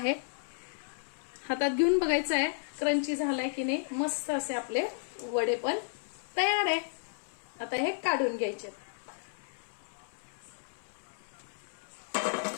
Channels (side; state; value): right; silent; 56 dB below the other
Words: हातात घेऊन बघायचं आहे क्रंची झालाय की नाही. मस्त असे आपले वडे पण तयार आहे. आता हे काढून घ्यायचे.